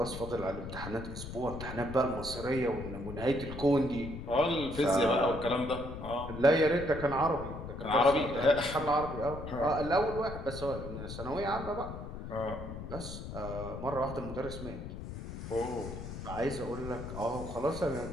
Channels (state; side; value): noise; left; rumble, 9 dB below the sound